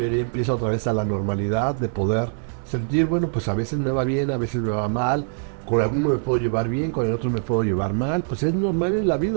empieza otra vez a la normalidad de poder sentir, bueno, pues a veces me va bien, a veces me va mal. Con alguno me puedo llevar bien, con el otro me puedo llevar mal. Pues es normal en la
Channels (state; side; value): silent; left; digital silence